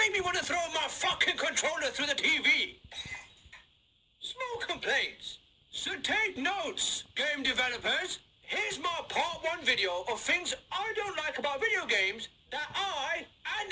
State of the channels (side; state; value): both; identical; correlation 1.00